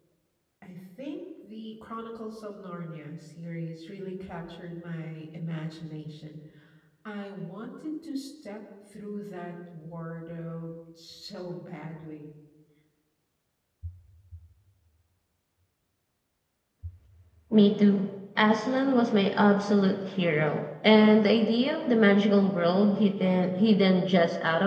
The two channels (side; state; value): both; identical; correlation 1.00